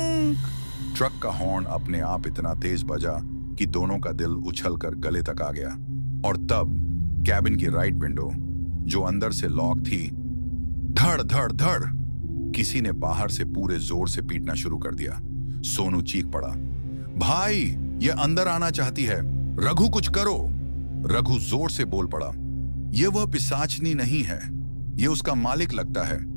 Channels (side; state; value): both; inverted; correlation -1.00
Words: ट्रक का हॉर्न अपने आप इतना तेज बजा कि दोनों का दिल उछलकर गले तक आ गया। और तब कैबिन की राइट विंडो, जो अंदर से लॉक थी, धड़ धड़ धड़ किसी ने बाहर से पूरे जोर से पीटना शुरू कर दिया। सोनू चीख पड़ा, भाई, ये अंदर आना चाहती है, रघु कुछ करो। रघु जोर से बोल पड़ा, यह वह पिशाचनी नहीं है, यह उसका मालिक लगता है,